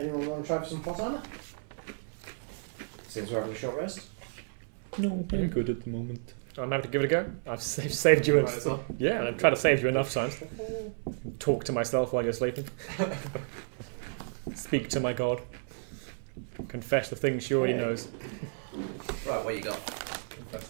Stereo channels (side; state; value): left; silent; 57 dB below the other